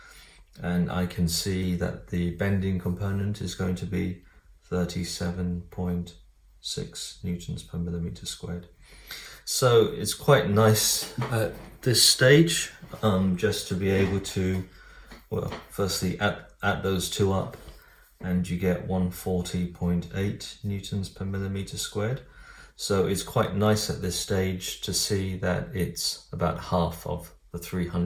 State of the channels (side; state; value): both; identical; correlation 1.00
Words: and I can see that the bending component is going to be 37.6 newtons per millimeter squared. So it's quite nice at this stage just to be able to, well, firstly add those two up, and you get 140.8 newtons per millimeter squared. So it's quite nice at this stage to see that it's about half of the